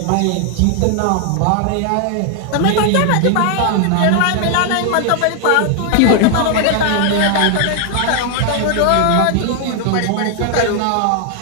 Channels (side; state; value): both; different; correlation 0.00